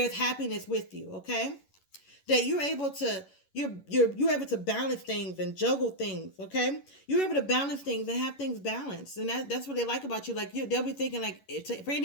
happiness with you, okay? That you're able to you're able to balance things and juggle things, okay? You're able to balance things and have things balanced, and that's what they like about you. Like they'll be thinking like for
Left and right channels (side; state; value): right; late; 11 ms